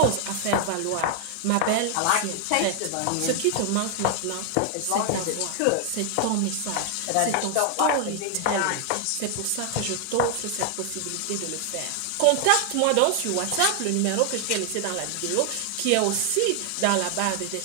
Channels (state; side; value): different; both; correlation 0.00